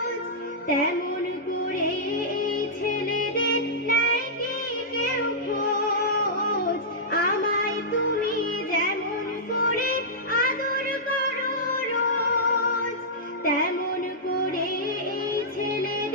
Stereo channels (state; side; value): normal; both; correlation -0.13